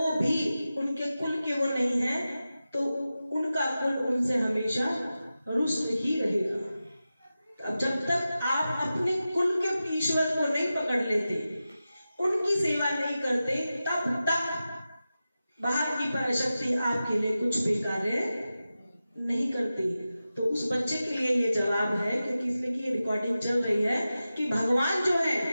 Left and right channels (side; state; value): both; inverted; correlation -0.94